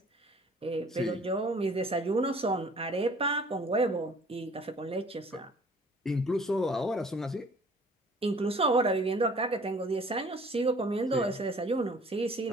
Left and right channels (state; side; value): normal; both; correlation 0.53